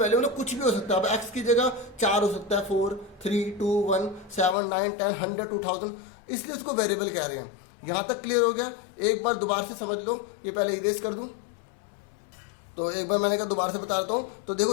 मतलब कुछ भी हो सकता है। अब x की जगह 4 हो सकता है, 4, 3, 2, 1, 7, 9, 10, 100, 2000, इसलिए उसको वेरिएबल कह रहे हैं। यहां तक क्लियर हो गया? एक बार दोबारा से समझ लो। ये पहले इरेज कर दूं, तो एक बार मैंने कहा दोबारा से बता देता हूं। तो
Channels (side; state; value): right; drops out; at 4.5 s